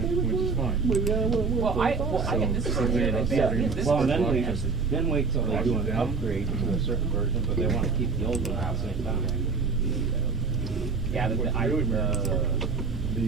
with which is one? fine. Well, I get this version in advance. This Well, version. then wait till they do an upgrade to a certain version, but they wanna keep the old one at the same time. Yeah,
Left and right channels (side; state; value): left; quieter; 4.7 dB